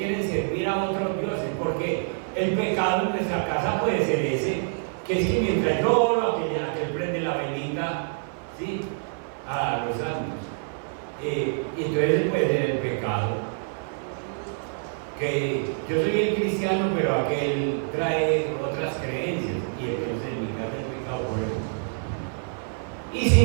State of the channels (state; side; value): silent; left; 56 dB below the other